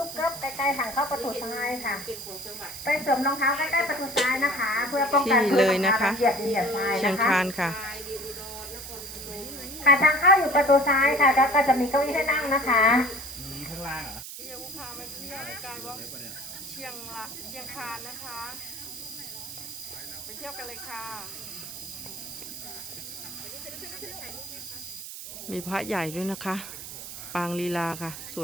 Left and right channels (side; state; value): right; noise; hiss, 10 dB below the sound